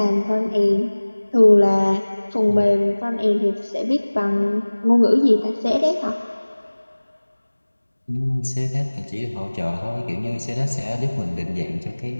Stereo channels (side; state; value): both; inverted; correlation -1.00